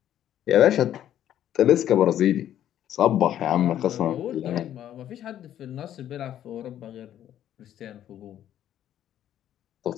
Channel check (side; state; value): right; quieter; 11.3 dB